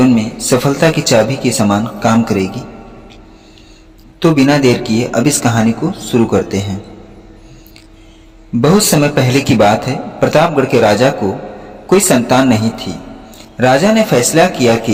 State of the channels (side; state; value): both; identical; correlation 1.00